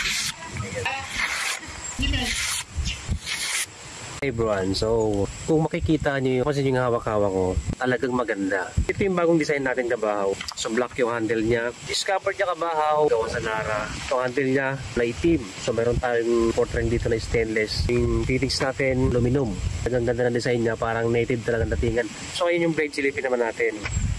Hey everyone, so kung makikita nyo kasi yung hawak-hawak ko, talagang maganda. Ito yung bagong design natin kabahaw. So black yung handle niya. Discovered niya kabahaw, gawa sa Nara. Yung handle niya na itim. So meron tayong portrait dito na stainless. Yung fittings natin, aluminum. Ang ganda ng design niya, parang native talagang datingan. So ngayon yung blade silipin naman natin.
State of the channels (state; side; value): identical; both; correlation 1.00